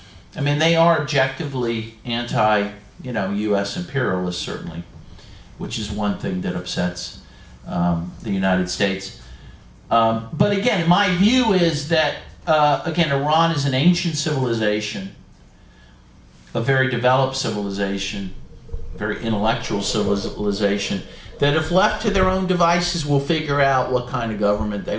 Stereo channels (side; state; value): both; identical; correlation 1.00